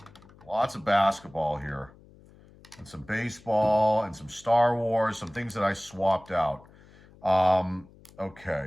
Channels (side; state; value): left; noise; hum, 25 dB below the sound